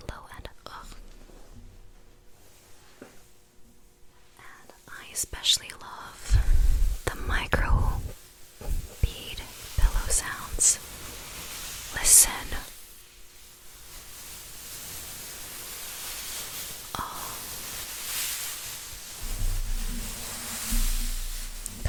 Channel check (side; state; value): both; identical; correlation 1.00